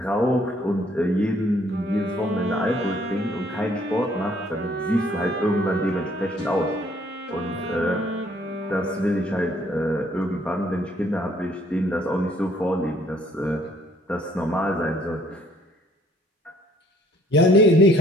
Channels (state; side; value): normal; both; correlation 0.63